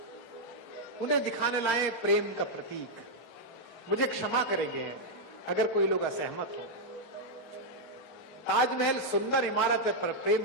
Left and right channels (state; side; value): normal; both; correlation -0.02